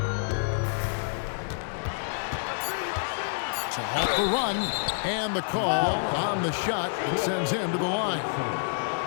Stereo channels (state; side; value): silent; right; 59 dB below the other